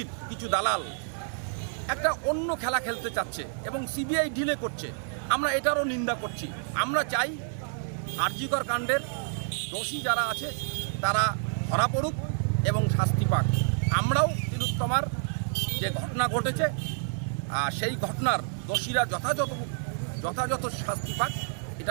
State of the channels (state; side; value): silent; left; 59 dB below the other